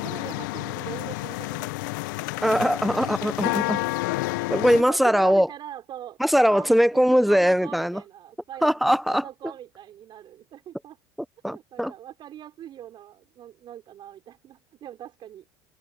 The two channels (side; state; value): both; normal; correlation 0.88